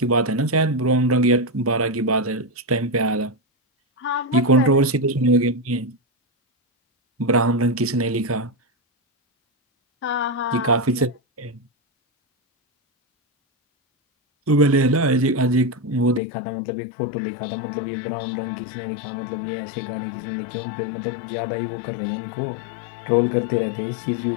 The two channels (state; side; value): drops out; right; at 16.2 s